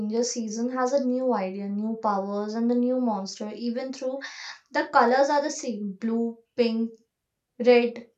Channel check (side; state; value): both; identical; correlation 1.00